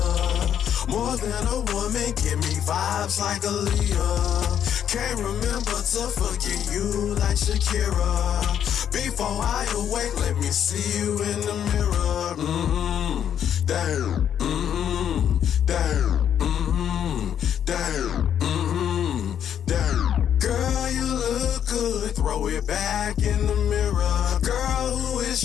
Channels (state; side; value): quieter; right; 9.3 dB